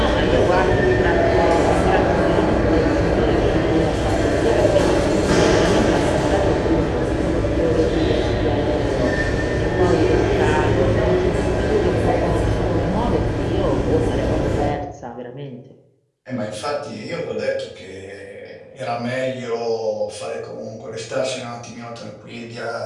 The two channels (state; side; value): identical; both; correlation 1.00